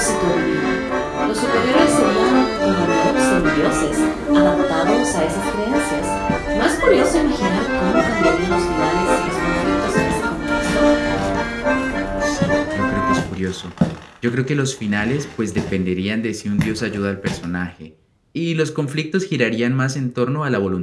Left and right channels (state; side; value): identical; both; correlation 1.00